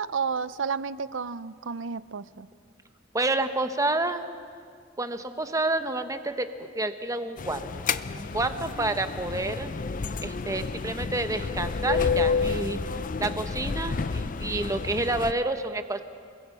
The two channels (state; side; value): normal; both; correlation 0.23